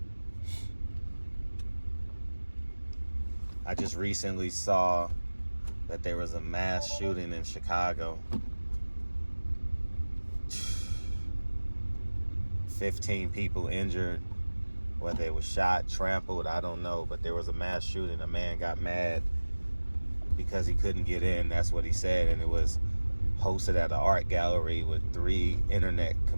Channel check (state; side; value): inverted; both; correlation -1.00